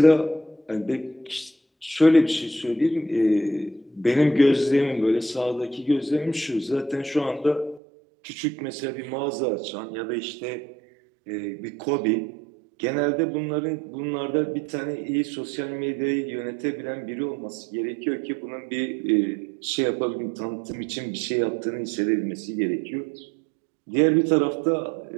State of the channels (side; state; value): left; drops out; at 7.8 s